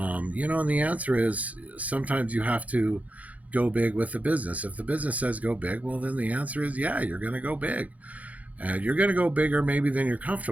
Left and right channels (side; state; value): left; late; 0.071 ms